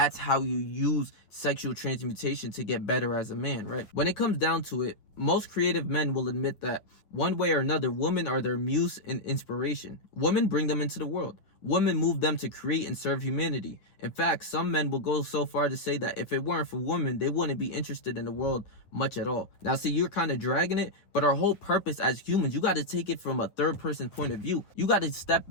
how you use sexual transmutation to get better as a man, right? When it comes down to it, most creative men will admit that one way or another, women are their muse and inspiration. Women bring them into the world. Women move them to create and serve humanity. In fact, some men will go so far to say that if it weren't for women, they wouldn't be interested in the world much at all. Now, see, you're kind of dragging it, but our whole purpose as humans, you got to take it from a third person point of view. You got to step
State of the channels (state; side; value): late; right; 9.4 ms